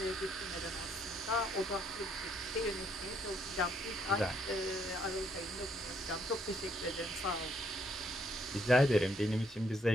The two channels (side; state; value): both; normal; correlation 0.70